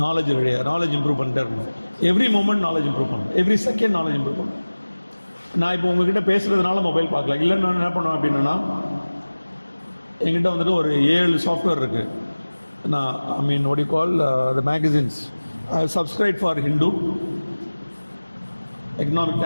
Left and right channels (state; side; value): inverted; both; correlation -1.00